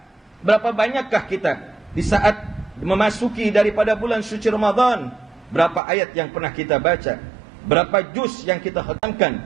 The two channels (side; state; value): left; drops out; at 5.8 s